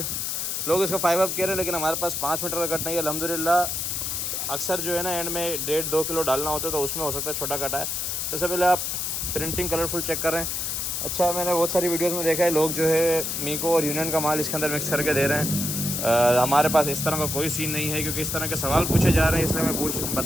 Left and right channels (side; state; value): left; noise; hiss, 2 dB below the sound